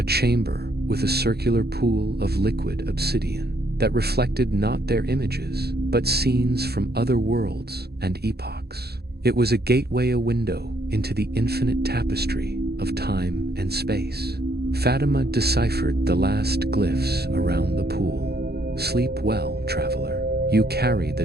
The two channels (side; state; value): left; late; 0.47 ms